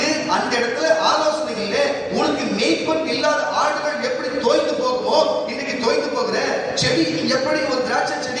அந்த இடத்துல ஆலோசனைகள்ல உனக்கு மேய்ப்பன் இல்லாத ஆடுகள் எப்படி தோய்ந்து போகுமோ, இன்னைக்கு தோய்ந்து போகிற செடி எப்படி ஒரு திராட்சை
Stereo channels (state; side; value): identical; both; correlation 1.00